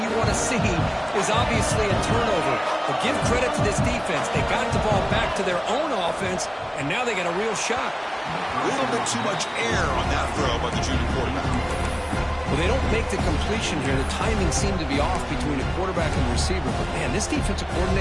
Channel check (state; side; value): identical; both; correlation 1.00